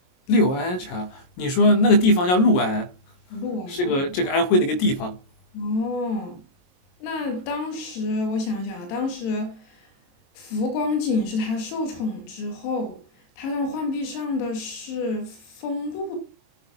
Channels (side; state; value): right; late; 22 ms